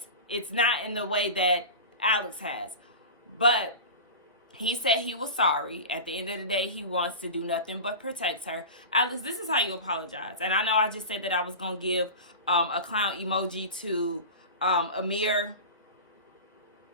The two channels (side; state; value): both; inverted; correlation -0.31